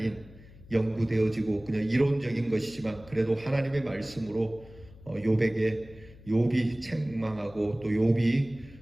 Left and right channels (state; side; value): noise; left; hum, 21 dB below the sound